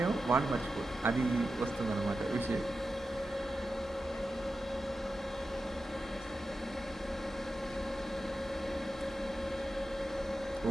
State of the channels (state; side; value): normal; both; correlation 0.91